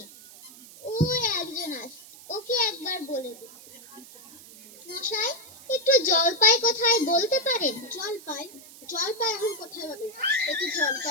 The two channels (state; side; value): noise; right; hiss, 19 dB below the sound